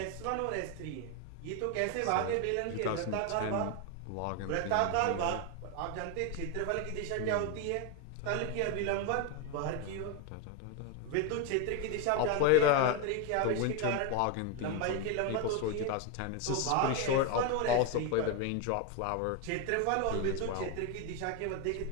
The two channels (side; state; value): both; different; correlation 0.02